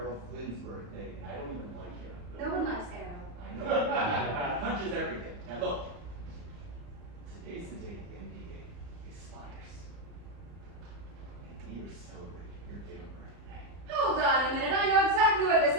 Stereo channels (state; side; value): late; left; 34 ms